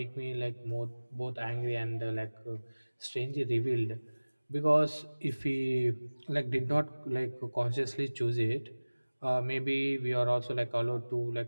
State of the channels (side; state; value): both; inverted; correlation -1.00